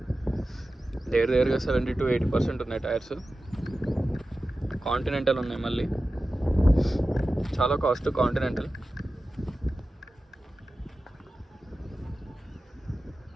దగ్గరగా 70 to 80% ఉన్నాయి టైర్స్. కాంటినెంటల్ ఉన్నాయి, మళ్ళీ చాలా కాస్ట్ కాంటినెంటల్.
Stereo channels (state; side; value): normal; both; correlation 0.94